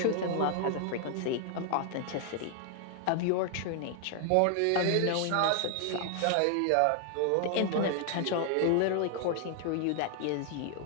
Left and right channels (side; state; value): both; different; correlation 0.00